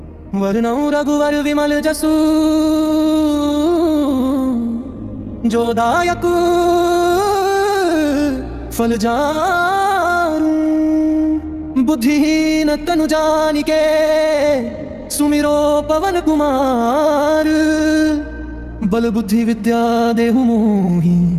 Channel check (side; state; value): both; identical; correlation 1.00